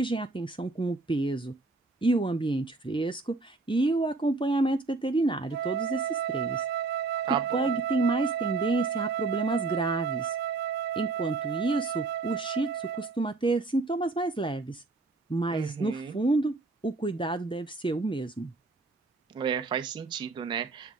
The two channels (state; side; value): quieter; left; 3.5 dB